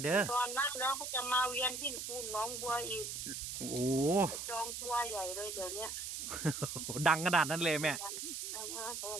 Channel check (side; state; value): right; noise; hiss, 5 dB below the sound